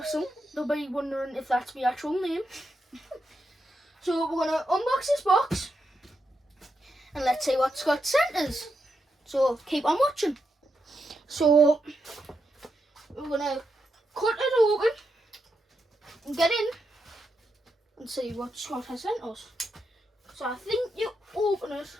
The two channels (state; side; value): normal; both; correlation 0.84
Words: they'll be wondering if that's my actual name. So we're going to unbox this box and let's see what Scott sent us. So keep on watching. So we're going to cut it open and get in and see what Scott has sent us. So I think you open it